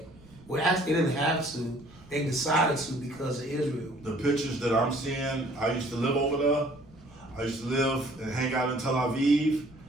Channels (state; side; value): noise; right; rumble, 24 dB below the sound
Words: Well, actually, they didn't have to. They decided to because of Israel. The pictures that I'm seeing, I used to live over there. I used to live and hang out in Tel Aviv.